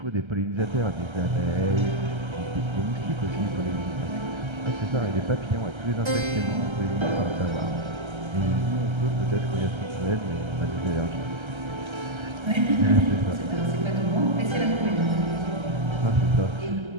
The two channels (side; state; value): left; late; 1.3 ms